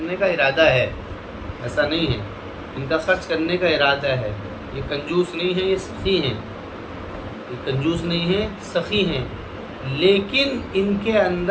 کا ارادہ ہے، ایسا نہیں ہے، ان کا خرچ کرنے کا ارادہ ہے، یہ کنجوس نہیں ہیں، یہ سخی ہیں، یہ کنجوس نہیں ہیں، سخی ہیں، لیکن ان کے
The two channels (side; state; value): both; identical; correlation 1.00